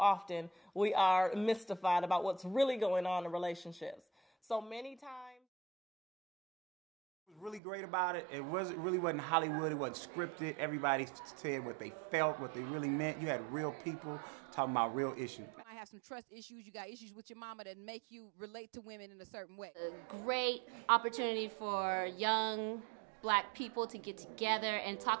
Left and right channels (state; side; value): drops out; left; at 7.6 s